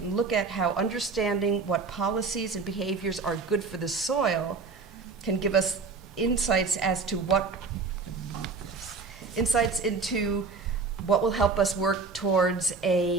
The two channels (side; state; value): left; quieter; 4.6 dB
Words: look at how understanding what policies and behaviors are good for the soil can give us insights into what will help us work towards